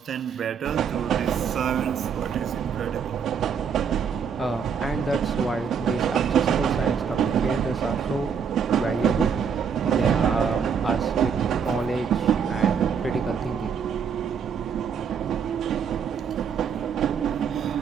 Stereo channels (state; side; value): quieter; left; 6.8 dB